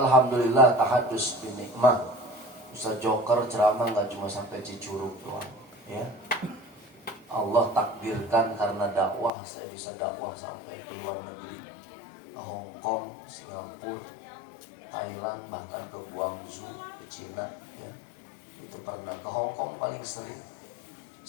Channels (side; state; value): right; drops out; at 9.3 s